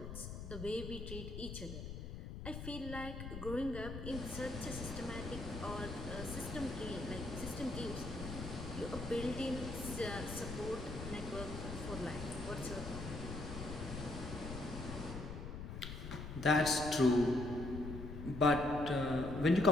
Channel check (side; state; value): left; noise; rumble, 7 dB below the sound